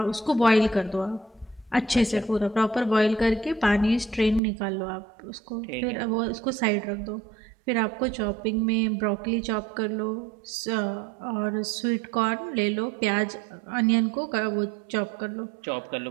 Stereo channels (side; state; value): left; drops out; at 4.4 s